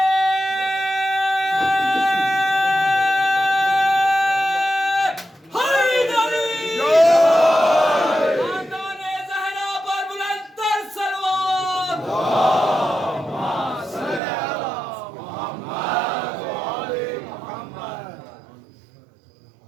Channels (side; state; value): left; drops out; at 14.2 s